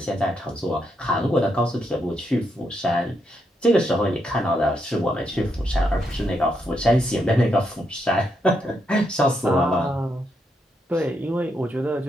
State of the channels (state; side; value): normal; both; correlation 0.80